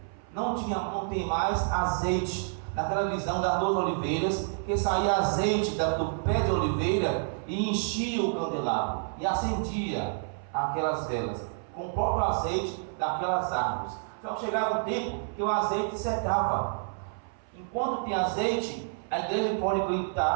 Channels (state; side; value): silent; left; 59 dB below the other